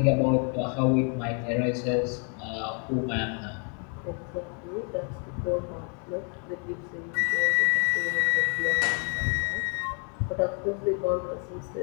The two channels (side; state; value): right; quieter; 39.3 dB